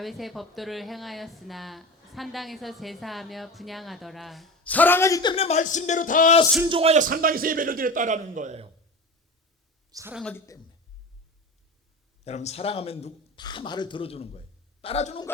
법도를 행하였으나 산당에서 제사하며 분향하더라. 사랑하기 때문에 말씀대로 다 순종하여 산당에서 예배를 드렸다라는 거예요. 사랑하기 때문에. 여러분 사랑하면 다 말을 들어주는 거예요. 따라주는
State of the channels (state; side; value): normal; both; correlation 0.29